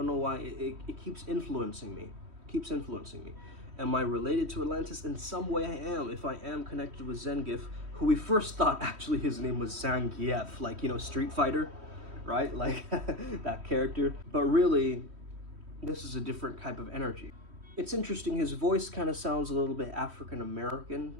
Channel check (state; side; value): late; left; 3.1 ms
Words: know why, it keeps influencing me. Am I related to Atlantis? In some way I am, if I am connected with Zengif, who we first thought actually his name was Zengif, like, you know, Street Fighter, right? Like, that character. But really, this is a different type of energy. It's interesting, his voice kind of sounds a little bit